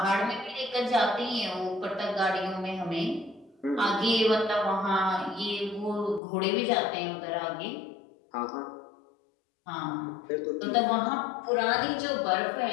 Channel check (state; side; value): drops out; right; at 6.2 s